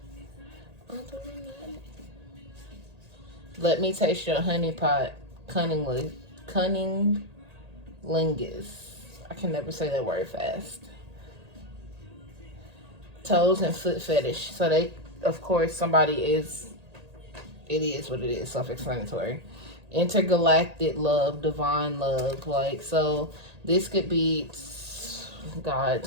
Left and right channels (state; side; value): late; left; 1.8 ms